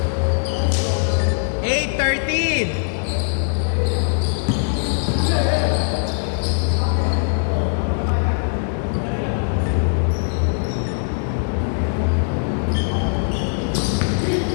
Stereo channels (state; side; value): silent; right; digital silence